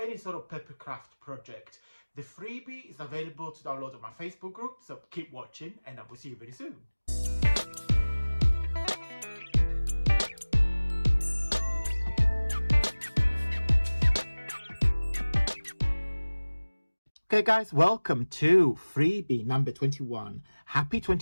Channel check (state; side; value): inverted; both; correlation -1.00